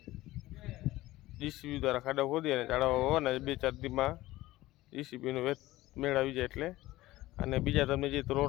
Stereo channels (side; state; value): right; quieter; 17.3 dB